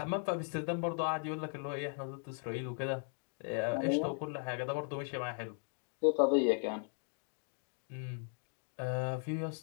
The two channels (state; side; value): silent; right; 53 dB below the other